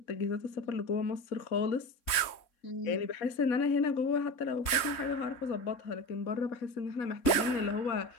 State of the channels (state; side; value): late; right; 3.2 ms